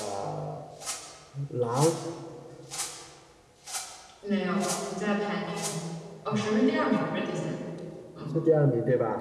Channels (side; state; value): both; identical; correlation 1.00